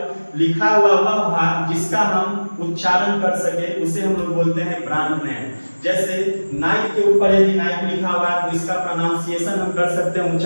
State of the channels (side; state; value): both; inverted; correlation -1.00